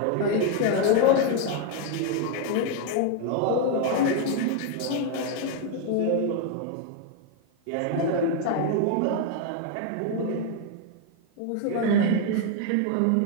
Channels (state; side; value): different; both; correlation 0.01